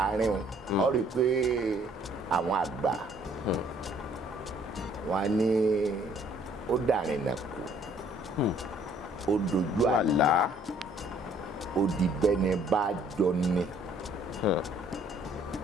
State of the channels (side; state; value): both; normal; correlation 0.61